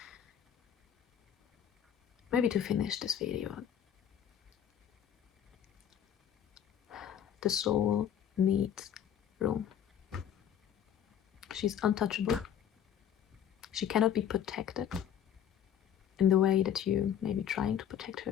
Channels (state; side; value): quieter; right; 9.3 dB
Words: Maybe to finish this video, the soul needs room. She's untouchable. She cannot be protected in the way that you may be trying to protect her.